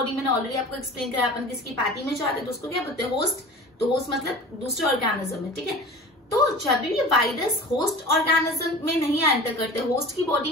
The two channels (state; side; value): normal; both; correlation 0.37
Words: मैंने ऑलरेडी आपको एक्सप्लेन किया, अपन किसकी पार्टी में जाते हैं तो उसको क्या बोलते हैं? होस्ट। तो होस्ट मतलब दूसरे ऑर्गेनिज्म है। ठीक है। तो जब भी वायरस होस्ट ऑर्गेनिज्म में नहीं एंटर करते, होस्ट की